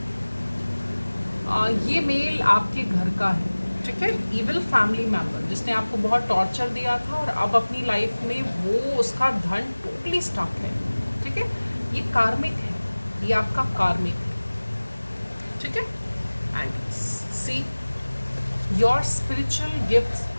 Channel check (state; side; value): inverted; both; correlation -1.00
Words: ये मेल आपके घर का है। ठीक है, इविल फैमिली मेंबर जिसने आपको बहुत टॉर्चर दिया था और अब अपनी लाइफ में वो उसका धन टोटली स्टक है। ठीक है, ये कार्मिक है, ये आपका कार्मिक है। ठीक है, and see your spiritual gifts